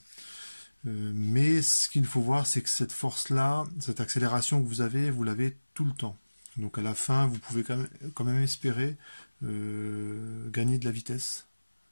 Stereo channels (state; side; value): inverted; both; correlation -1.00